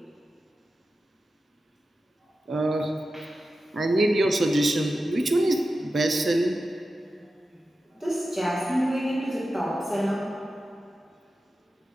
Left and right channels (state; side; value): normal; both; correlation 0.92